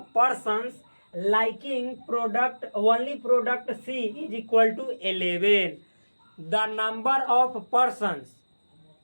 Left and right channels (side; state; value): both; inverted; correlation -1.00